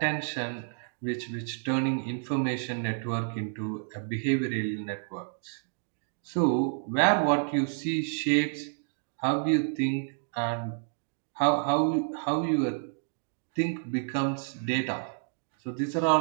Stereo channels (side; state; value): left; silent; digital silence